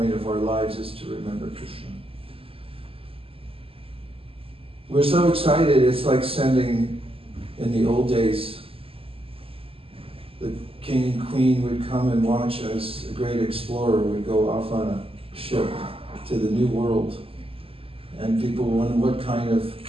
of our lives is to remember Krishna. We're so excited, it's like sending, in the old days, the king and queen would come and watch as a great explorer would go off on a ship to the new world. And people wonder what kind of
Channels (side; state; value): left; late; 0.27 ms